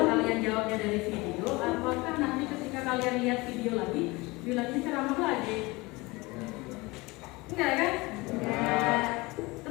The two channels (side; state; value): right; quieter; 23.3 dB